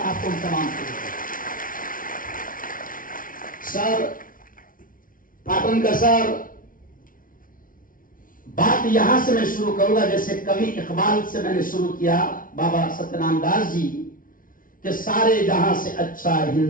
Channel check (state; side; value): late; right; 0.40 ms